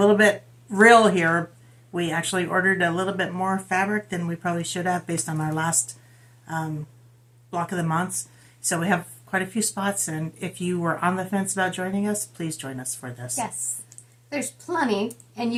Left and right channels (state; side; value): identical; both; correlation 1.00